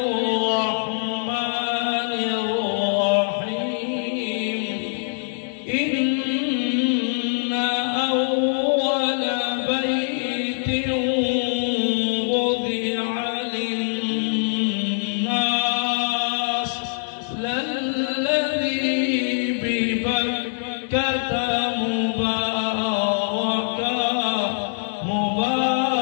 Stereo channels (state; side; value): silent; right; digital silence